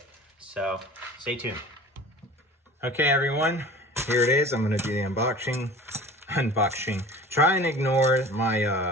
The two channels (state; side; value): normal; both; correlation 0.41